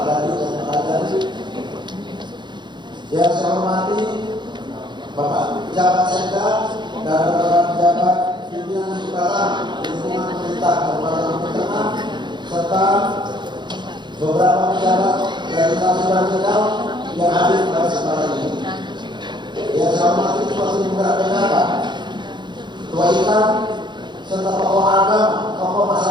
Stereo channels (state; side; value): late; left; 0.22 ms